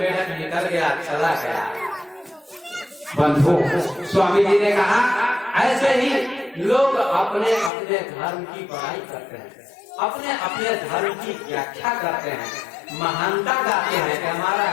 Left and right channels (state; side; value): drops out; right; at 7.7 s